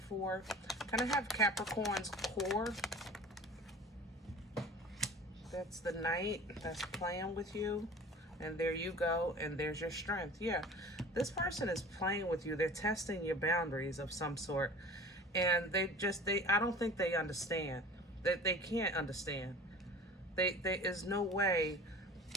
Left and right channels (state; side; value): normal; both; correlation 0.41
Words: Kind of have Capricorn's core. That's the Knight that's playing with you. And there you go. And there's your strength. Yeah, this person is playing with you. They're testing your boundaries of some sort. And I don't think they understand. They can't understand. There is no way